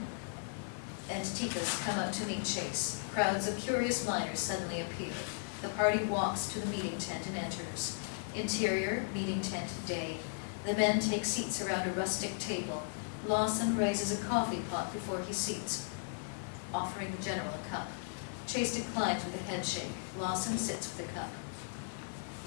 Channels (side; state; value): right; silent; digital silence